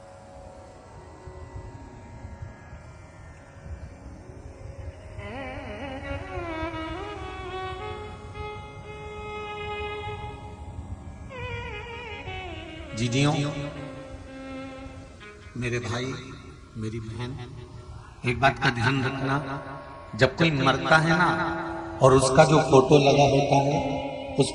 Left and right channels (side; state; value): both; identical; correlation 1.00